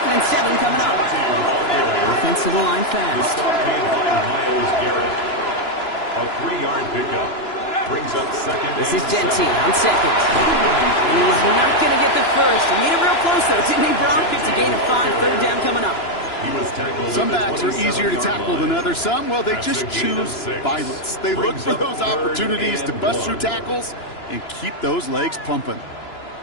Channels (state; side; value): late; right; 2.9 ms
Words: and 7 coming up. Offensive line fast. A 3-yard pickup. Brings up 2nd. This is Genty on 2nd. And he's not going to get the first. He made it real close, though, didn't he, Bronk? It's a gain of 5. 3rd down coming up. Some backs are easier to tackle than others. Some, well, they just choose violence. They look for those opportunities to bust through tackles and keep those legs pumping.